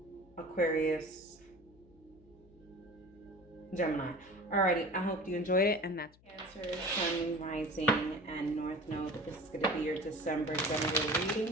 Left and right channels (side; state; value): left; noise; hum, 27 dB below the sound